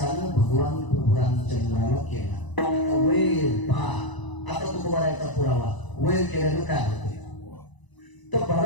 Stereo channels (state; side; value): late; right; 1.0 ms